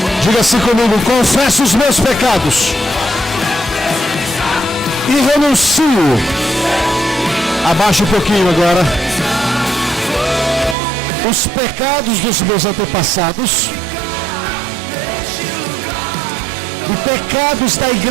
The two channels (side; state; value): left; drops out; at 10.8 s